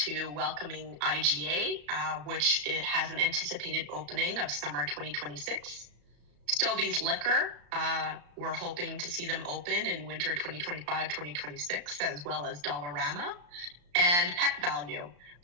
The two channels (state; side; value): late; left; 34 ms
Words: welcoming IGA, which it has an anticipated opening of summer 2026. Stobie's Liquor, we're hoping to see them open in winter 2025-2026, as well as Dollarama. And Pet Value,